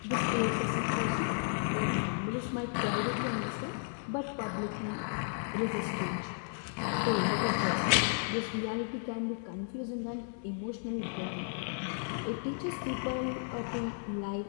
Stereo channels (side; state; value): right; silent; digital silence